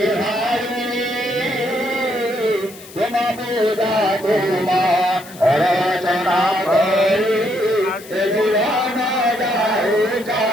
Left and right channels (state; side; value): noise; left; hiss, 19 dB below the sound